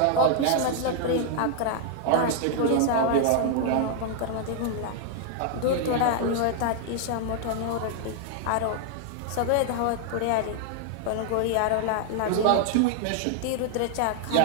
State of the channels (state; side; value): different; both; correlation 0.00